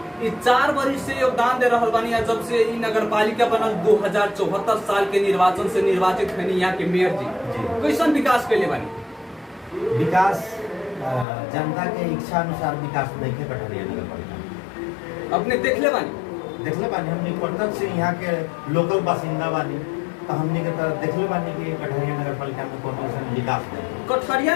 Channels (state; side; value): drops out; right; at 11.2 s